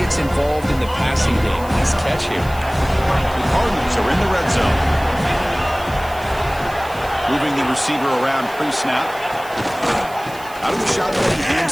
involved in the passing game. Nice catch here. The Cardinals are in the red zone. Moving the receiver around pre-snap. Out of the shotgun, he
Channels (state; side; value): noise; right; hiss, 20 dB below the sound